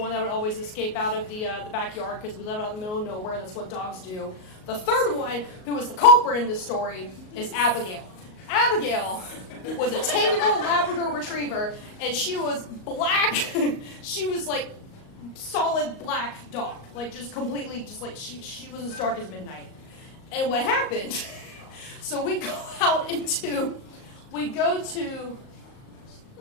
that would always escape out of the backyard because we live out in the middle of nowhere. That's what dogs do. The third one, who was the culprit in this story, is Abigail. Abigail was a 10-year-old Labrador Retriever, and she was black. She was like solid black dog, like just completely, just like she was as dark as midnight. And what happened? So we go to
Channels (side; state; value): right; late; 38 ms